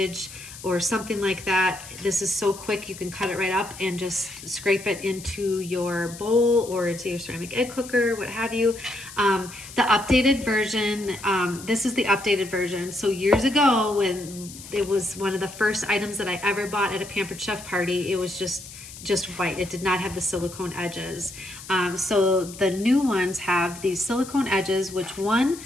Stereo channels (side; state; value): left; noise; hiss, 15 dB below the sound